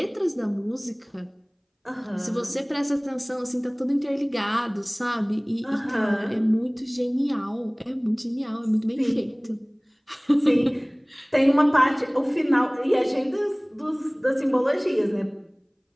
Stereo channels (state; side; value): identical; both; correlation 1.00